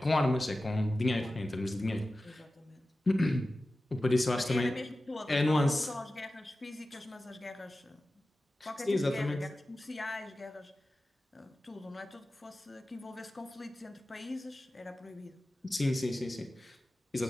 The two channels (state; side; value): normal; both; correlation 0.95